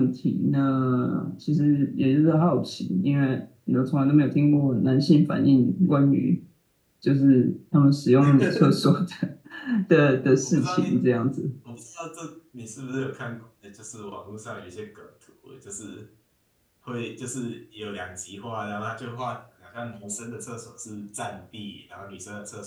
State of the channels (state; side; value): identical; both; correlation 1.00